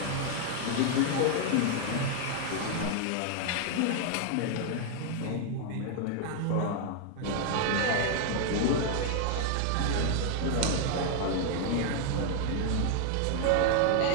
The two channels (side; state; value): both; different; correlation 0.00